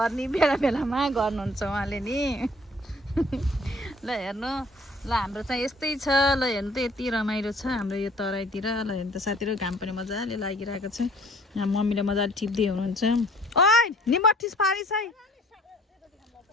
बेला बेलामा गर्नुहुन्छ उहाँले नि। ल हेर्नु, ल हाम्रो चाहिँ यस्तै छ। ल हेर्नु त यति रमाइलो छ हाम्रो यो तराईतिर। ल हेर्नु त साथीहरू, घाम पनि मजाले लागिरहेको छ। यहाँ मम्मीले मजाले टिप्दै हुनुहुन्छ। ओइ निमठिस पारिस है।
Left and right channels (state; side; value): normal; both; correlation 0.55